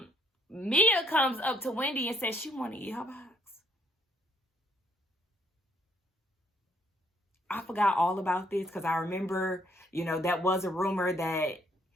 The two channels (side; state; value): both; normal; correlation 0.67